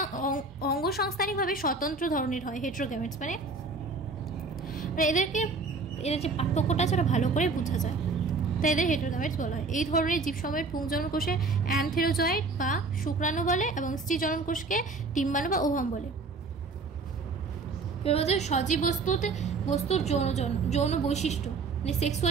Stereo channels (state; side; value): quieter; left; 4.0 dB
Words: অঙ্গসংস্থানিকভাবে স্বতন্ত্র ধরনের হয়, হেটেরোগ্যামেটস। মানে এদের যে পার্থক্যটা আছে ওটা ভালো করে বোঝা যায়, তাই এদের হেটেরোগ্যামেটস বলা হয়। এই ধরনের জীবসমূহের পুংজনন কোষে অ্যানথেরোজয়েড বা শুক্রাণু বলে এবং স্ত্রীজনন কোষকে ডিম্বাণু বা ওভাম বলে। এবার বলছে সজীব বস্তুর যৌন বৈশিষ্ট্য, মানে